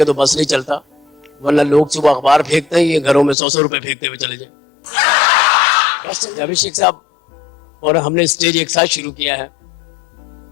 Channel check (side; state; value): right; drops out; at 3.4 s